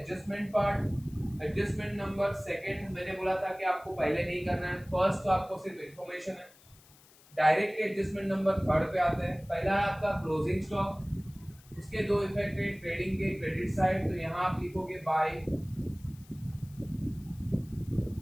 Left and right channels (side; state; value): left; noise; hiss, 26 dB below the sound